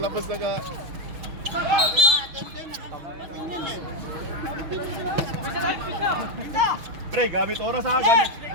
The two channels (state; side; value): late; left; 6.5 ms